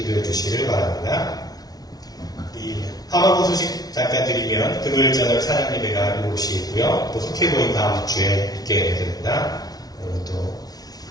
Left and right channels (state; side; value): late; right; 0.19 ms